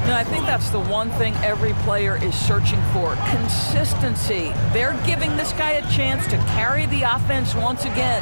And I think that's the one thing every player is searching for, consistency. They're giving this guy a chance to carry the offense once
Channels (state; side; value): inverted; both; correlation -1.00